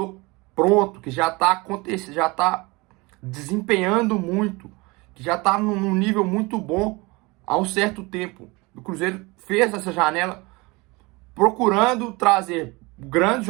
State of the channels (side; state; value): left; quieter; 24.8 dB